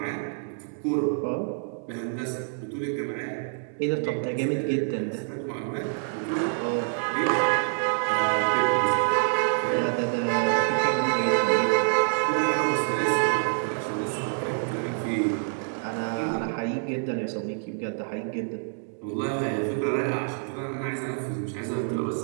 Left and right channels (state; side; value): silent; left; digital silence